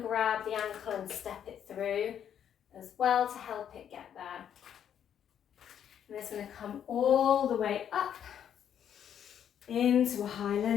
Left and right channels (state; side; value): quieter; right; 9.2 dB